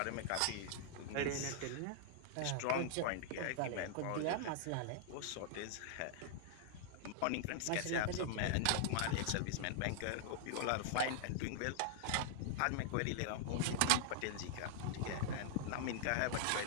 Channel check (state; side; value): different; both; correlation -0.01